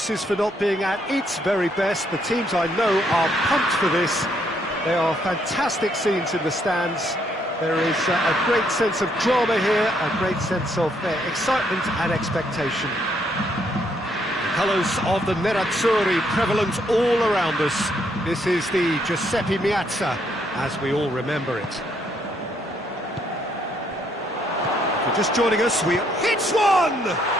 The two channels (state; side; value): normal; both; correlation 0.72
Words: for not being at its very best. The teams I know are pumped for this. There are fantastic scenes in the stands. There is a great sense of drama here, a great sense of excitement and expectation. The colours of the Nerazzurri prevalent all around us. This is the Giuseppe Meazza, as we all remember it. If you're just joining us, we hits one!